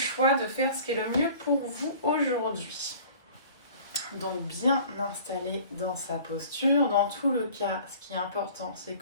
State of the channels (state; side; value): inverted; both; correlation -0.47